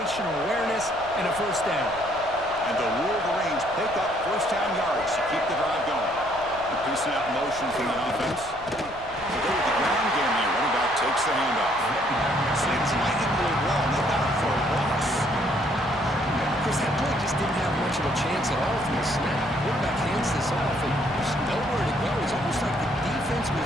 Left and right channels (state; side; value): noise; left; rumble, 19 dB below the sound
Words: awareness and a first down. And the Wolverines pick up first down yards to keep the drive going. Increasing out motion from the offense. They go with the ground game here. Running back takes the handoff. Slings right into the wall, and they got it for a loss. Chris, that play just didn't have much of a chance at all from the snap. Quarterback hands this off, and there's nowhere to go. It's almost like the defense